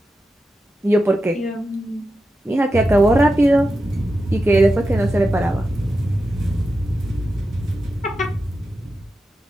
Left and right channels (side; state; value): both; normal; correlation 0.90